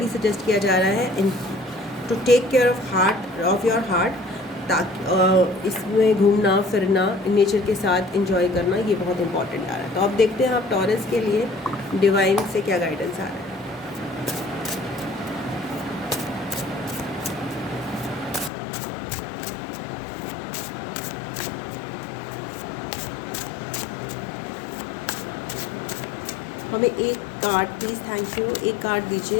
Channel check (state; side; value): drops out; right; at 18.5 s